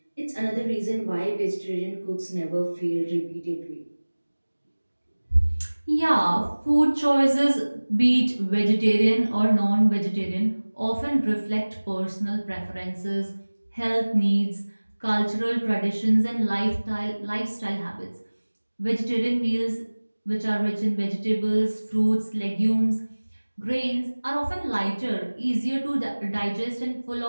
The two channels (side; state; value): both; inverted; correlation -1.00